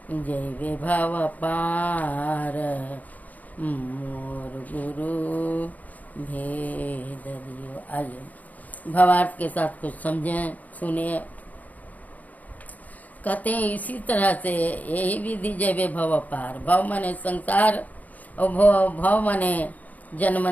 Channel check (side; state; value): right; late; 0.078 ms